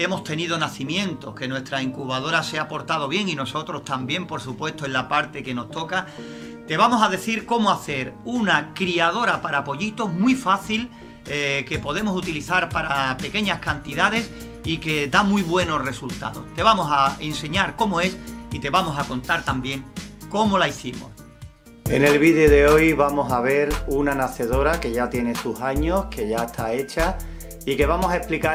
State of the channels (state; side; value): identical; both; correlation 1.00